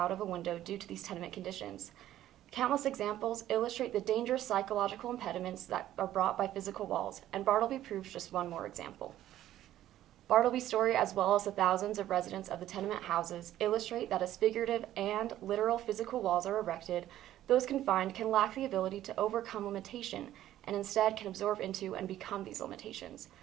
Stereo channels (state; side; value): quieter; left; 13.0 dB